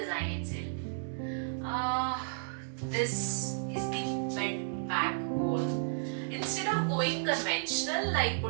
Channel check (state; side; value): silent; left; digital silence